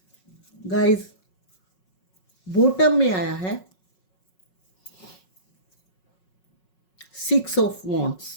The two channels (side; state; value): right; late; 5.4 ms